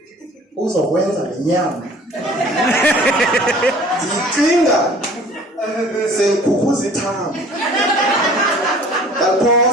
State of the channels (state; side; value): normal; both; correlation 0.49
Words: uzokwenza le nyama ndicinga sengikhukhuza ithambo.